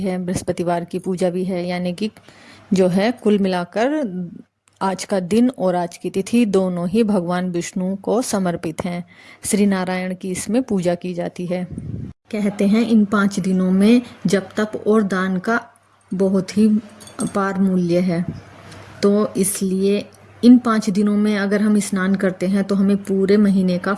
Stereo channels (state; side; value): identical; both; correlation 1.00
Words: है, बृहस्पतिवार की पूजा भी है, यानी कि जो है कुल मिलाकर आज का दिन और आज की तिथि दोनों ही भगवान विष्णु को समर्पित हैं। श्री नारायण की इसमें पूजा की जाती है। कहते हैं इन 5 दिनों में जप तप और दान का बहुत ही अपार मूल्य है, तो इसलिए इन 5 दिनों में अगर हम स्नान करते हैं तो हमें पूरे महीने का